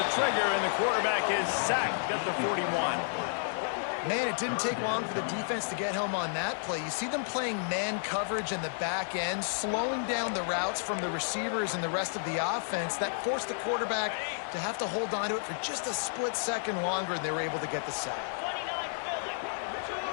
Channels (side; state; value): right; silent; digital silence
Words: trigger, and the quarterback is sacked at the 41. Man, it didn't take long for the defense to get home on that play. You see them playing man coverage in the back end, slowing down the routes from the receivers and the rest of the offense. That forced the quarterback to have to hold on to it for just a split second longer, and they were able to get the sack.